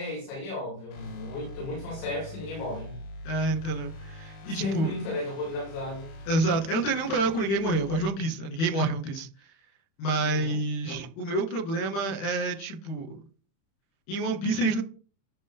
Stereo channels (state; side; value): late; right; 31 ms